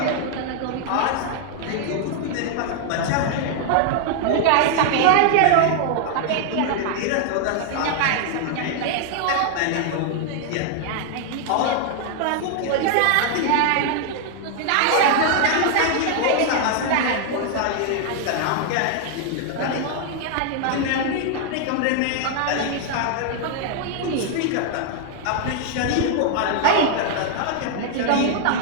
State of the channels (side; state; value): both; different; correlation 0.00